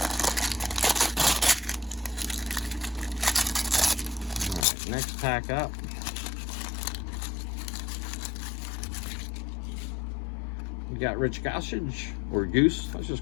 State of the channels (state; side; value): drops out; right; at 4.7 s